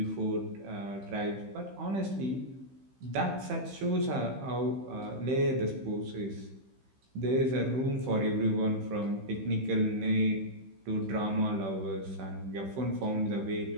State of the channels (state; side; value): late; left; 15 ms